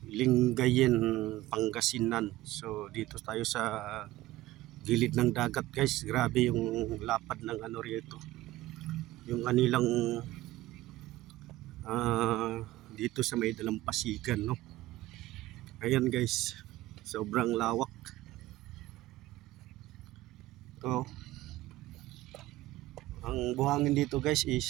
Lingayen, Pangasinan. So dito tayo sa gilid ng dagat guys. Grabe yung lapad ng ano rito. Yung kanilang dito sa may dalampasigan, no. Ayan guys, sobrang lawak. To ang buhangin dito guys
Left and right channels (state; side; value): quieter; left; 16.8 dB